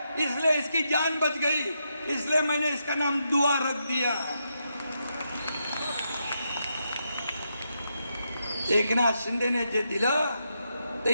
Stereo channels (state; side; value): inverted; both; correlation -0.83